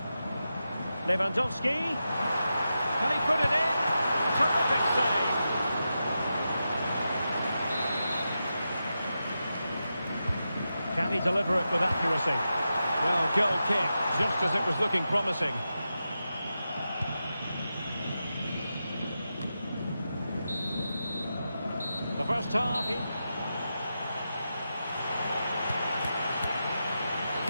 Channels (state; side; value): inverted; both; correlation -0.89